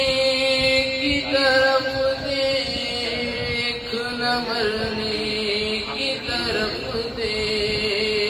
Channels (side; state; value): both; identical; correlation 1.00